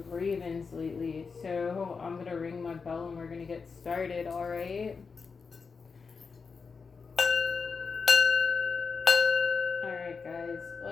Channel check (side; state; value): right; quieter; 5.1 dB